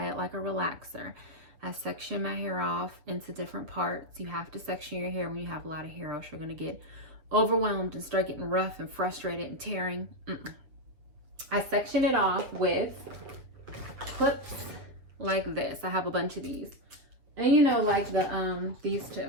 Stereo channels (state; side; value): late; left; 7.4 ms